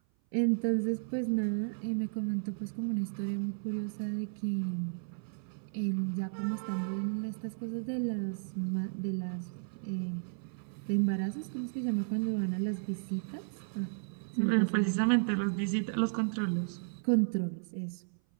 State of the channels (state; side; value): silent; left; 55 dB below the other